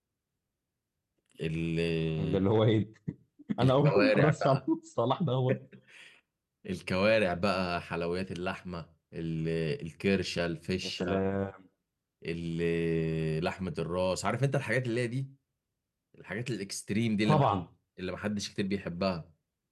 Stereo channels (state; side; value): identical; both; correlation 1.00